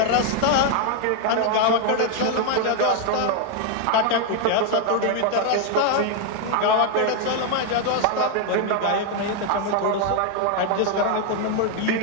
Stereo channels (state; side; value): different; both; correlation 0.00